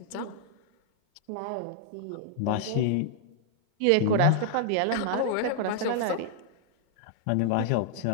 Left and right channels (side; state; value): both; different; correlation -0.01